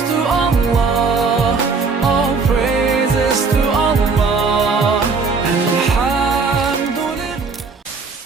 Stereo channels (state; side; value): quieter; left; 4.7 dB